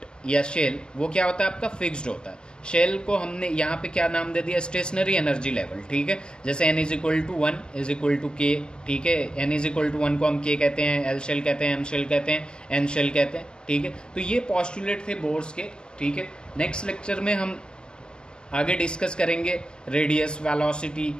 या शेल वो क्या होता है आपका, फिक्स्ड होता है। शेल को हमने यहाँ पे क्या नाम दे दिया, स्टेशनरी एनर्जी लेवल, ठीक है। जैसे N = 1 = K, ठीक है। N = 1 को हम K कहते हैं, L शेल कहते हैं, M शेल कहते हैं, N शेल कहते हैं, ठीक है। तो ये पॉस्टुलेट थे बोर्स के, ठीक है। नेक्स्ट लेक्चर में हम आगे डिस्कस करेंगे रेडियस, वेलोसिटी,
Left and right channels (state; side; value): late; right; 0.046 ms